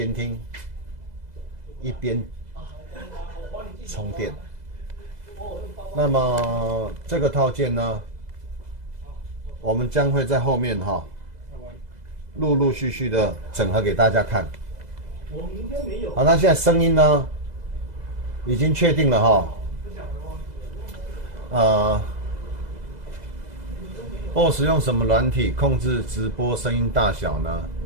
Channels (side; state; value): left; late; 2.0 ms